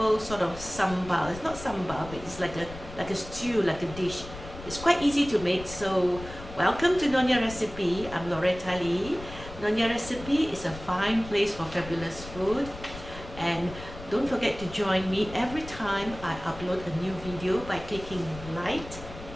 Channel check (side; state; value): left; noise; rumble, 13 dB below the sound